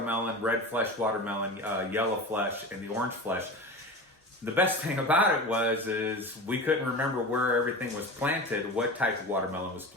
red flesh watermelon, yellow flesh, and the orange flesh. The best thing about it is we couldn't remember where everything was planted, what type of watermelon was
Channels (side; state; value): both; normal; correlation 0.30